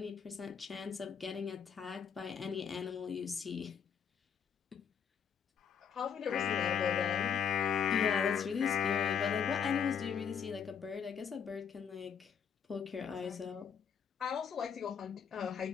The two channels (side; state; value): right; quieter; 7.3 dB